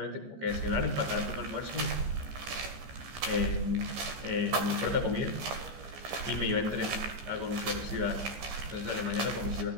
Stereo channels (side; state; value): left; late; 15 ms